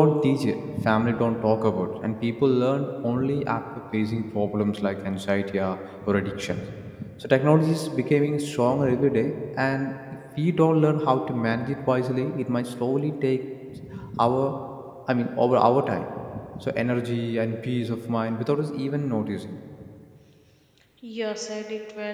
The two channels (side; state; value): both; identical; correlation 1.00